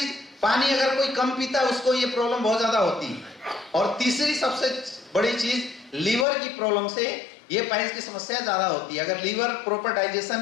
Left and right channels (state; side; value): drops out; right; at 6.2 s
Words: पानी अगर कोई कम पीता है उसको ये प्रॉब्लम बहुत ज्यादा होती है। और तीसरी सबसे बड़ी चीज, लीवर की प्रॉब्लम से ये पाइल्स की समस्या ज्यादा होती है। अगर लीवर प्रॉपर डाइजेशन